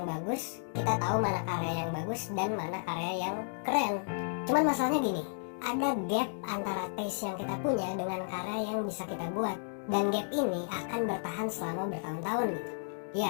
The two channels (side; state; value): right; silent; digital silence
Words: bagus, kita tahu mana karya yang bagus dan mana karya yang keren. Cuman masalahnya gini, ada gap antara taste yang kita punya dengan karya yang bisa kita buat. Dan gap ini akan bertahan selama bertahun-tahun gitu.